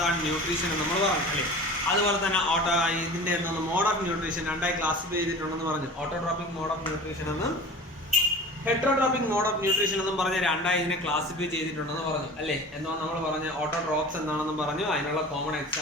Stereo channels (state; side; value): normal; both; correlation 0.38